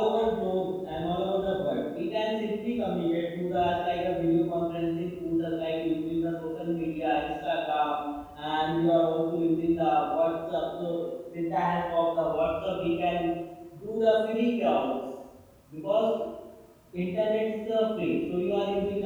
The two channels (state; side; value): identical; both; correlation 1.00